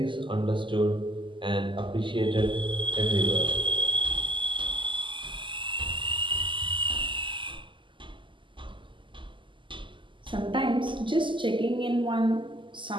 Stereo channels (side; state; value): left; late; 0.24 ms